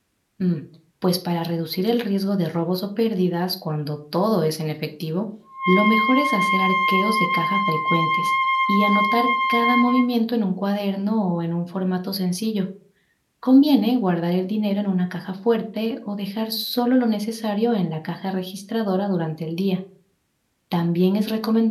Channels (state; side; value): identical; both; correlation 1.00